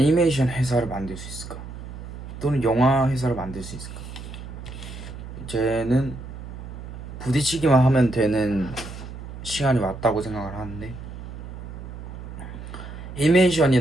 회사를 만들 수 있을까? 또는 영화 회사를 만들 수 있을까? 이제는 부딪히기만 하면 되는 시간이 왔다고 생각을 하는데,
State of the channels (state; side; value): noise; right; hum, 11 dB below the sound